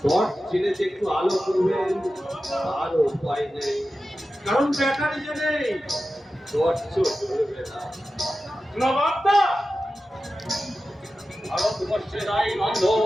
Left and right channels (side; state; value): both; normal; correlation 0.93